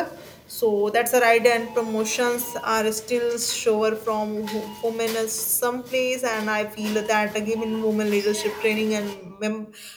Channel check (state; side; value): identical; both; correlation 1.00